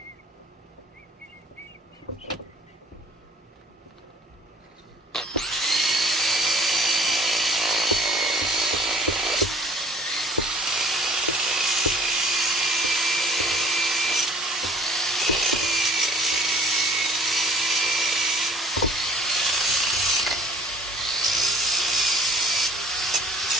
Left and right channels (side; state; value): both; normal; correlation 0.52